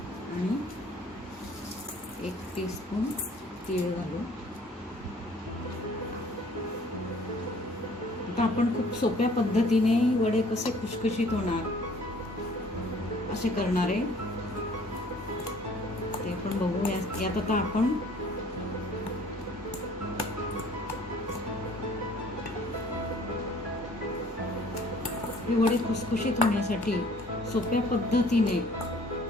आणि 1 टीस्पून तीळ घालू। आता आपण खूप सोप्या पद्धतीने वडे कसे खुशखुशीत होणार असे करणार आहे ते आपण बघू। यात आता आपण हे वडे खुसखुशीत होण्यासाठी सोप्या पद्धतीने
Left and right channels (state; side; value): normal; both; correlation 0.55